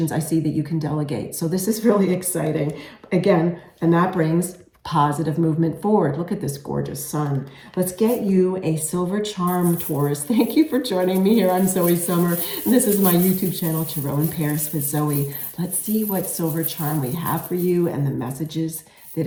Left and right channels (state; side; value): identical; both; correlation 1.00